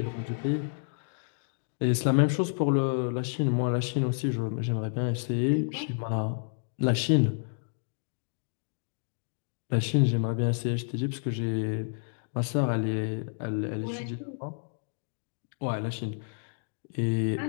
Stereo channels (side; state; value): right; silent; digital silence